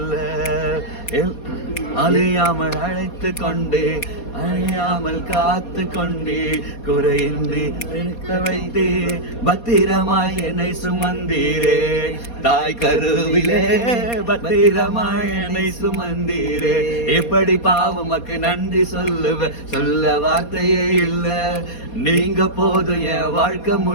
அழியாமல் அழைத்து கொண்டே, அழியாமல் காத்து கொண்டே, குறையின்றி இருக்க வைத்தே, பத்திரமாய் என்னை சுமந்தீரே. தாய் கருவிலே பத்திரமாய் என்னை சுமந்தீரே. எப்படி பாவமக்கு நன்றி சொல்ல வார்த்தையே இல்ல. நீங்க போதும் என் வாழ்க்கை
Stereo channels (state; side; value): late; right; 4.2 ms